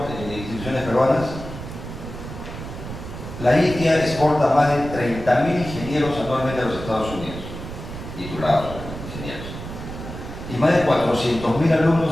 instituciones peruanas. La India exporta más de 30.000 ingenieros anualmente a los Estados Unidos, titulados ingenieros. Y más de 400.000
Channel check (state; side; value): noise; right; rumble, 10 dB below the sound